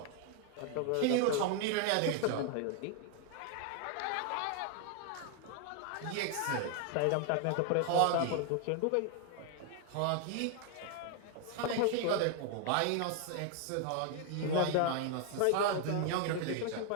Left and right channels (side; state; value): both; different; correlation 0.00